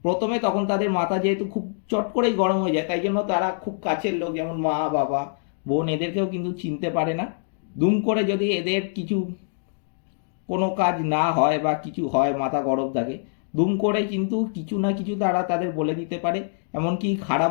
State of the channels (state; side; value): silent; right; digital silence